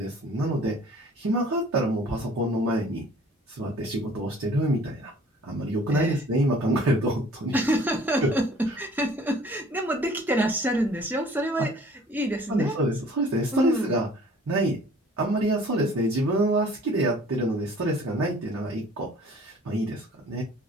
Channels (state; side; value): normal; both; correlation 0.51